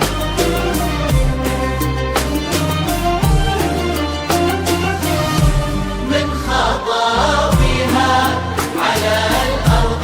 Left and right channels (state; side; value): identical; both; correlation 1.00